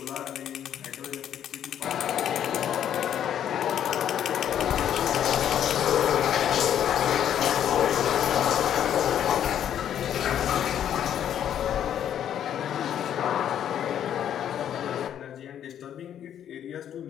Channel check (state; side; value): quieter; right; 10.0 dB